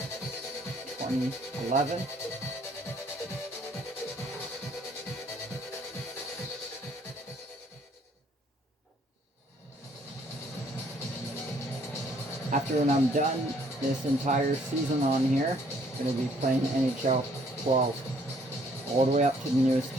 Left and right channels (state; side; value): normal; both; correlation 0.63